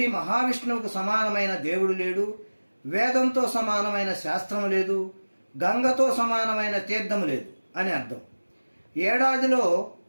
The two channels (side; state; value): both; inverted; correlation -1.00